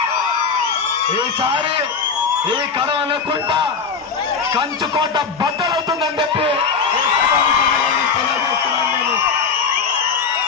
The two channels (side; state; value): right; quieter; 5.5 dB